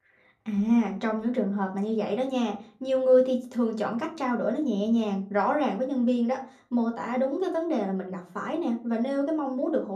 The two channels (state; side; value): identical; both; correlation 1.00